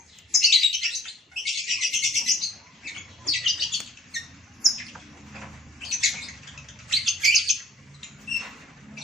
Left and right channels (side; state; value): both; normal; correlation 0.54